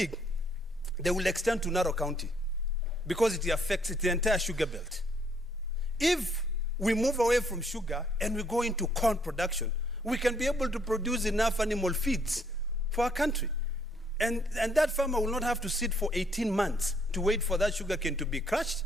they will extend to Narok County because it affects the entire sugar belt. If we move away from sugar and we go into corn production, we can be able to produce enough animal feeds for our country. And that farmer will not have to sit for 18 months to wait for that sugarcane to be crushed.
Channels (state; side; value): normal; both; correlation 0.68